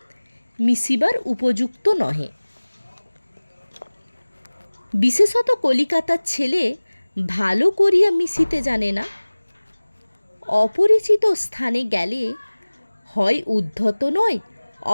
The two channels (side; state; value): both; inverted; correlation -1.00